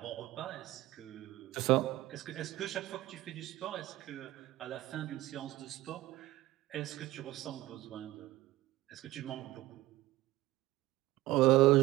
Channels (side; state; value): left; quieter; 17.1 dB